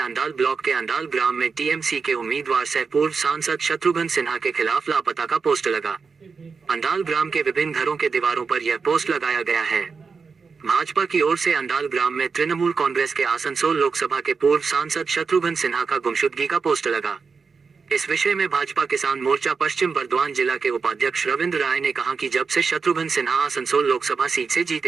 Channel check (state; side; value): quieter; left; 5.1 dB